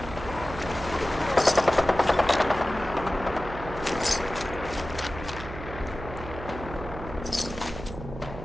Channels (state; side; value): noise; right; hum, 11 dB below the sound